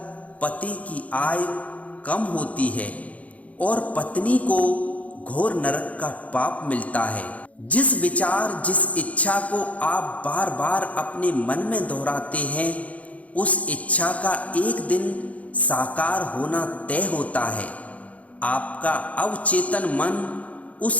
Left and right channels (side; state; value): right; late; 0.067 ms